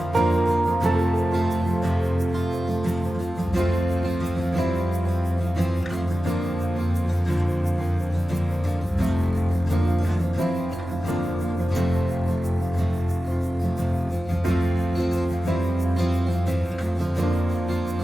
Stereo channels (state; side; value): normal; both; correlation 0.93